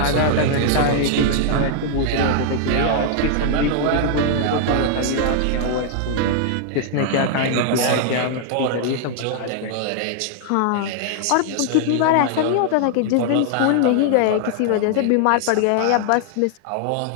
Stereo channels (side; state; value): both; different; correlation 0.00